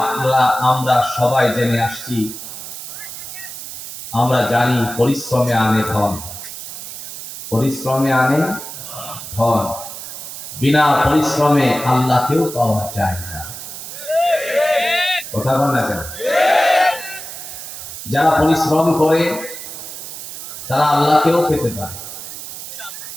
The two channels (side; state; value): right; noise; hiss, 10 dB below the sound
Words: আমরা সবাই জেনে আসছি। আমরা জানি পরিশ্রমে আনে ধন, পরিশ্রমে আনে ধন। বিনা পরিশ্রমে আল্লাহকেও পাওয়া যায় না। কথা বল না কেন? যারা পরিশ্রম করে তারা আল্লাহকেও পেতে পারে।